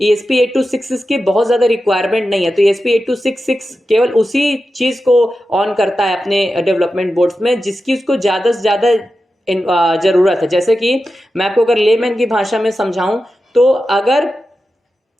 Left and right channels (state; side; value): normal; both; correlation 0.91